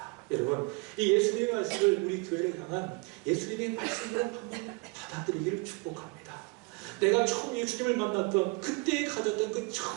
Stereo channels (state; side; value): quieter; left; 29.1 dB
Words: 여러분, 이 예수님의 말씀을 우리 교회를 향한 예수님의 말씀으로 한번 받아들이기를 축복합니다. 내가 처음 예수님을 만났던 그때 가졌던 그